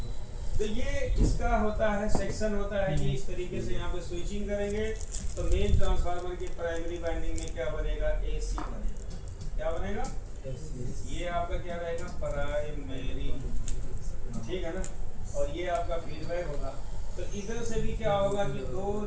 तो ये इसका होता है सेक्शन होता है, ये इस तरीके से यहाँ पे स्विचिंग करेंगे तो मेन ट्रांसफार्मर की प्राइमरी वाइंडिंग में क्या बनेगा, एसी बनेगा। क्या बनेगा, ये आपका क्या रहेगा, प्राइमरी, ठीक है ना। और ये आपका फीडबैक होगा। तो इधर से भी क्या होगा कि दो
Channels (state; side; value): identical; both; correlation 1.00